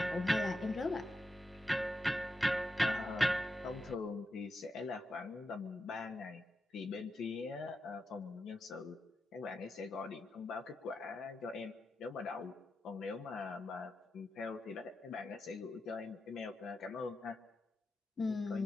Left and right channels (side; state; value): both; normal; correlation 0.88